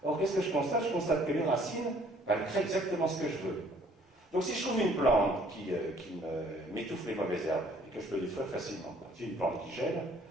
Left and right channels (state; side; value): normal; both; correlation 0.59